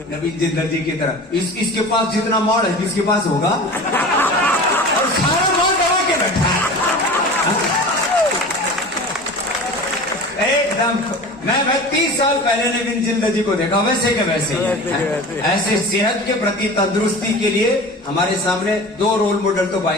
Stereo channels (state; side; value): normal; both; correlation 0.36